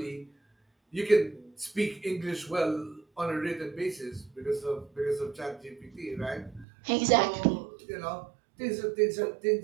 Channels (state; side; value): drops out; left; at 6.7 s